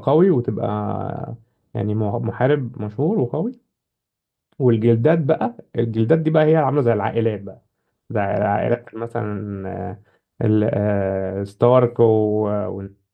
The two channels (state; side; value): identical; both; correlation 1.00